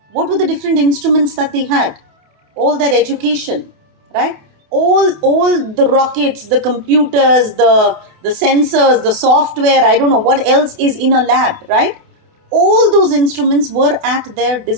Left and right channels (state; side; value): late; left; 28 ms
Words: What were the different instruments that they had? All their education, right? All the rockets, the computers, the sensors, the software, I don't know what else is in a lab, right? All those instruments were at their